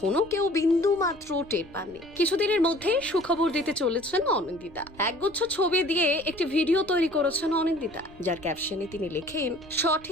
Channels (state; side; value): noise; left; rumble, 24 dB below the sound